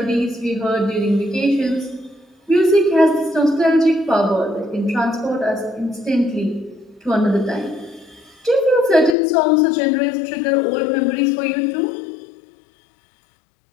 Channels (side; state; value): right; drops out; at 9.2 s